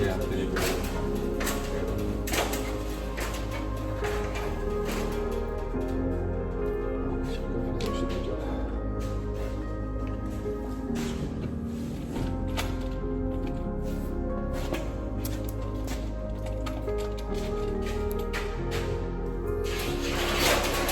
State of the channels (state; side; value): identical; both; correlation 1.00